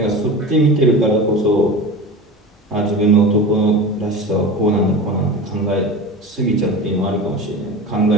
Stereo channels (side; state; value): both; normal; correlation 0.31